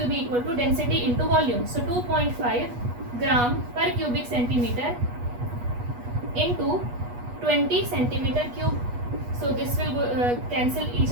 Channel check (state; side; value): late; left; 8.3 ms